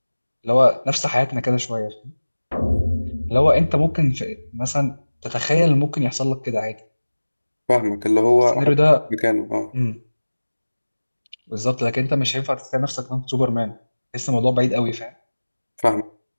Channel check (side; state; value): both; inverted; correlation -1.00